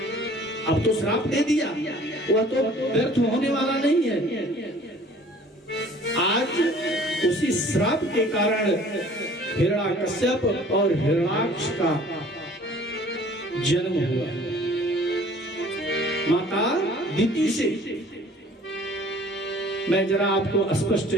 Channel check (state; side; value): normal; both; correlation 0.51